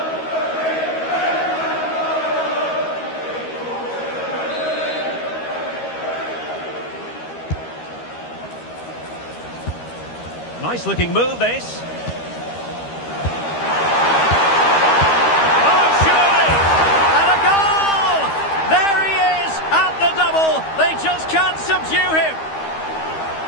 Nice looking move, this. Can't subdue him.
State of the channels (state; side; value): late; right; 13 ms